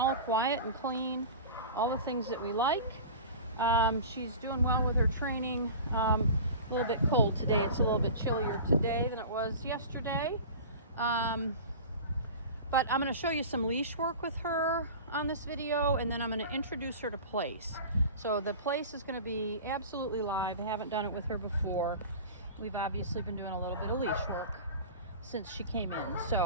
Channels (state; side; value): inverted; both; correlation -0.35